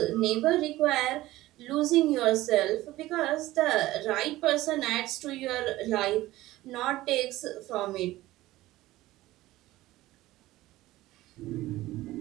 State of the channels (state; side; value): quieter; left; 17.0 dB